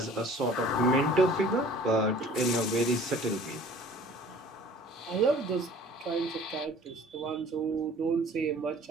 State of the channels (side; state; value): both; normal; correlation 0.49